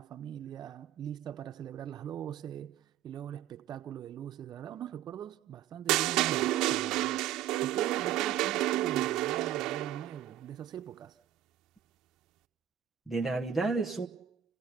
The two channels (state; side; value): quieter; left; 10.7 dB